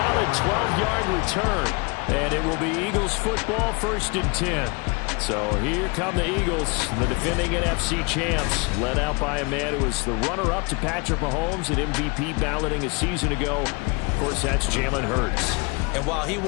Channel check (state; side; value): quieter; right; 29.8 dB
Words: 12-yard return. And it will be Eagles football, 1st and 10. So here come the Eagles, the defending NFC champs, led out by a man who was the runner-up to Patrick Mahomes at MVP balloting a season ago. Of course, that's Jalen Hurts. And while he